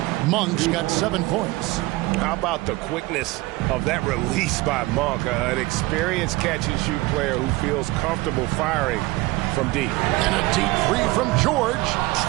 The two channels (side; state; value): left; quieter; 20.9 dB